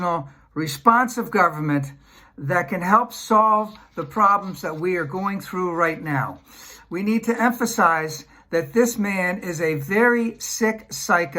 responsive government that can help solve the problems that we are going through right now. We need to emphasize that this man is a very sick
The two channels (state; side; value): identical; both; correlation 1.00